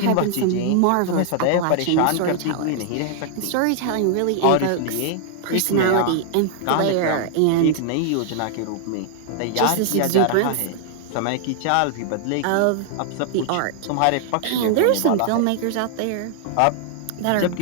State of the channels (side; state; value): both; different; correlation 0.00